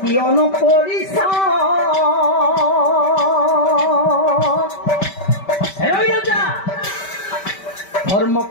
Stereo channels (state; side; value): late; right; 5.2 ms